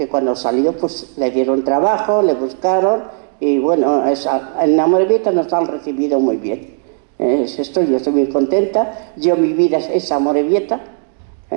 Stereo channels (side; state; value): left; silent; 60 dB below the other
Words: cuando salió pues le dieron trabajo, le buscaron, y bueno, en Amorebieta nos han recibido muy bien. Yo estoy muy contenta. Mi vida es Amorebieta.